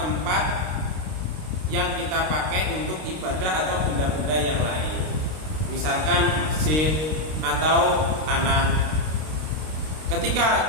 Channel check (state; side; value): late; left; 32 ms